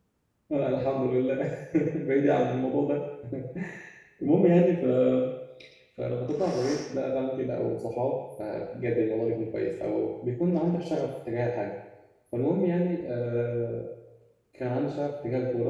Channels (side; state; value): both; identical; correlation 1.00